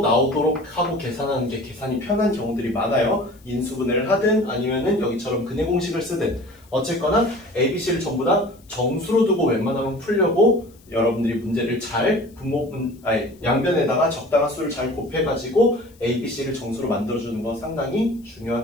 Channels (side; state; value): left; noise; hiss, 29 dB below the sound